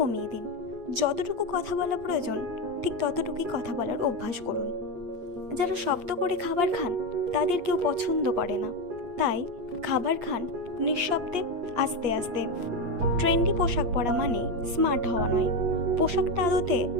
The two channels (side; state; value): left; late; 8.4 ms